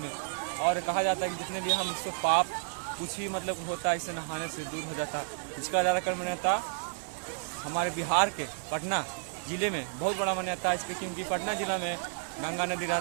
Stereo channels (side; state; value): left; silent; 57 dB below the other